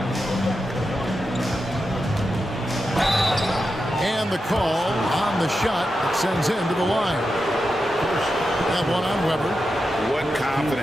And the call on the shot that sends him to the line. That one on Weber. What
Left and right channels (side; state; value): both; normal; correlation 0.89